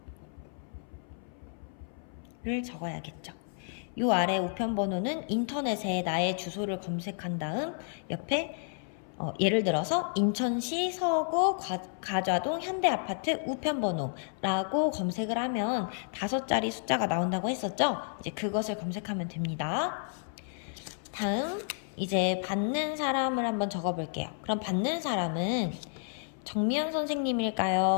적어야겠죠. 요 아래 우편번호는 인터넷에 나의 주소를 검색한 다음 옆에 예를 들어서 인천시 서구 가좌동 현대아파트 우편번호라고 검색을 하면 5자리 숫자가 나온다고 했었죠? 이제 그것을 검색하면 됩니다. 다음 이제 받는 사람을 한번 적어볼게요. 그럼 받는 사람은 정미연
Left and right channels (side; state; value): right; silent; 57 dB below the other